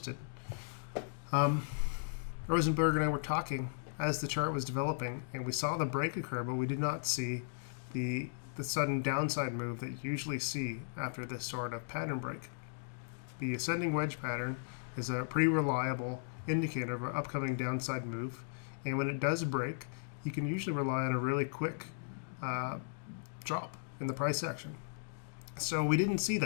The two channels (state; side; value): silent; right; digital silence